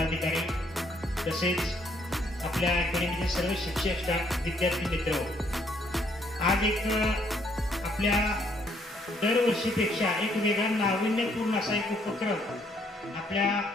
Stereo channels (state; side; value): normal; both; correlation 0.68